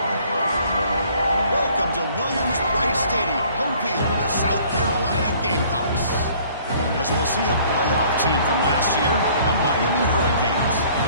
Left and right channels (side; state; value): both; inverted; correlation -0.56